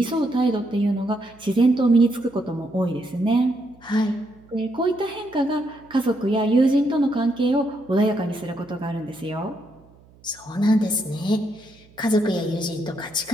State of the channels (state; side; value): noise; right; hum, 27 dB below the sound